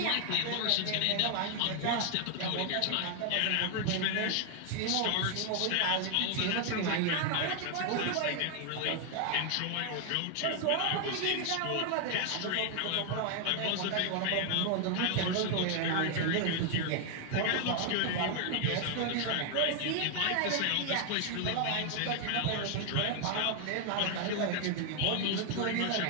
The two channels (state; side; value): different; both; correlation 0.00